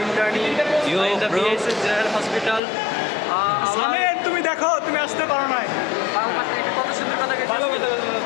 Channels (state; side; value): drops out; right; at 2.6 s